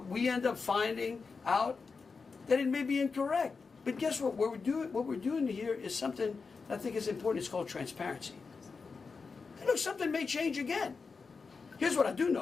we end up finding out that it may be incorrect. But guess what? What we're doing here is something I think is important. It's called transparency. And look, something may change again. Here's what I do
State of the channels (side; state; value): right; quieter; 4.8 dB